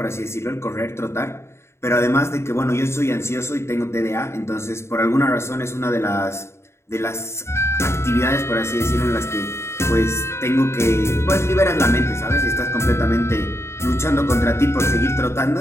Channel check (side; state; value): right; late; 0.13 ms